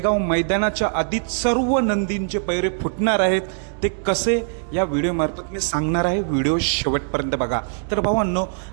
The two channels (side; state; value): left; silent; 64 dB below the other